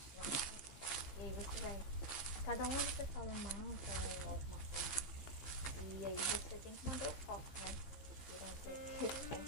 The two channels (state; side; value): late; right; 15 ms